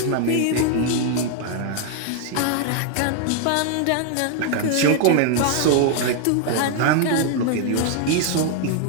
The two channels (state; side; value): different; both; correlation 0.00